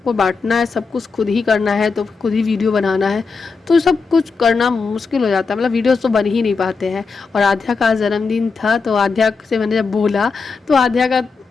बांटना है, सब कुछ खुद ही करना है, तो खुद ही वीडियो बनाना है, तो सब कुछ करना मुश्किल हो जाता है। मतलब वीडियोस तो बन ही नहीं पाते हैं। और आध्या का जन्मदिन था, तो आध्या से मैंने जब बोला तो आध्या का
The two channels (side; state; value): right; quieter; 4.8 dB